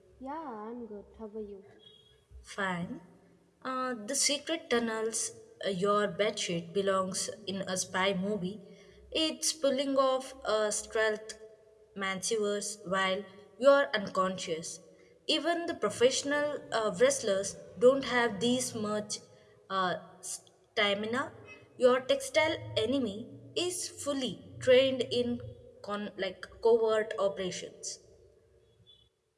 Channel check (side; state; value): both; identical; correlation 1.00